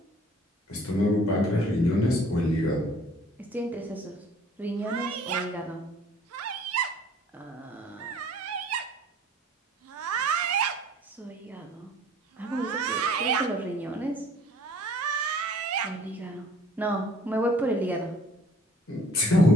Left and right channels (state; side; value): normal; both; correlation 0.53